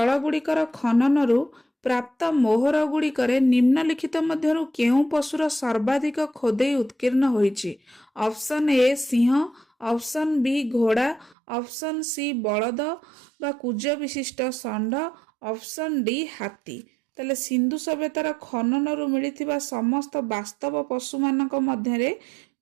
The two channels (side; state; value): left; drops out; at 11.4 s